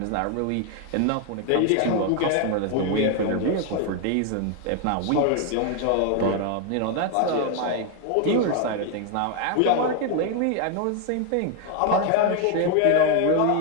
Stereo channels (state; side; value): different; both; correlation 0.01